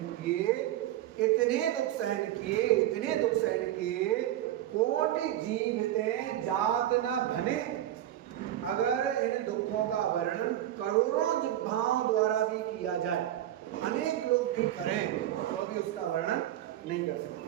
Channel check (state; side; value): quieter; left; 12.8 dB